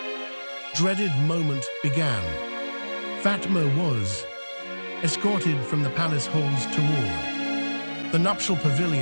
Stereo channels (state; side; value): inverted; both; correlation -1.00